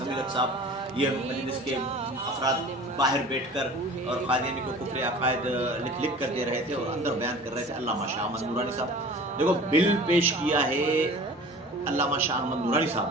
صاحب، یہ مجلس کے افراد باہر بیٹھ کر اور قادیانی کو کفر عقائد لکھ کر دے رہے تھے اور اندر بیان کر رہے تھے۔ علامہ شاہ احمد نورانی صاحب، دیکھو بل پیش کیا ہے علامہ شاہ احمد نورانی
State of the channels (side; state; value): both; normal; correlation 0.42